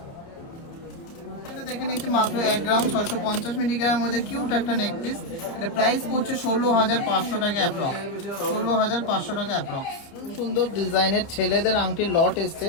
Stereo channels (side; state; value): right; late; 30 ms